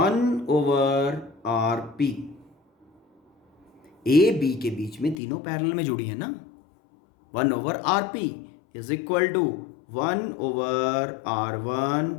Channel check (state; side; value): drops out; right; at 5.2 s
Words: A B के बीच में तीनों पैरेलल में जुड़ी है ना. 1/RP is equal to 1/R1